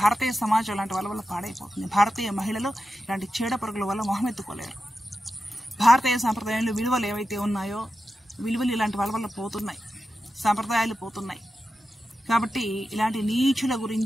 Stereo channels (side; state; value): both; normal; correlation 0.90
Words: సమాజం ఇలాంటి వాళ్ళ వల్ల పాడైపోతుంది. భారతీయ మహిళలు ఇలాంటి చీడ పురుగుల వల్ల మొహమెత్తుకోలేరు. భారతీయ సాంప్రదాయాలు విలువలు ఏవైతే ఉన్నాయో విలువలు ఇలాంటి వాళ్ళ వల్ల పోతున్నాయి, సాంప్రదాయాలు పోతున్నాయి. కాబట్టి ఇలాంటి నీచుల